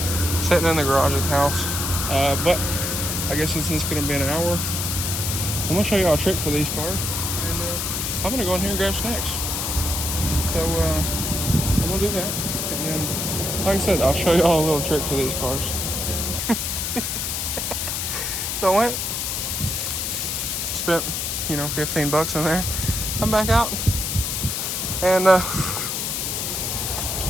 sitting in the garage at the house, but I guess since it's going to be an hour, I'm going to show you all a trick for these cars, and I'm going to go in here and grab snacks. So I'm going to do that, and then like I said, I'll show you all a little trick for these cars. So I went, spent, you know, $15 in there, come back out, and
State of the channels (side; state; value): left; noise; hiss, 1 dB below the sound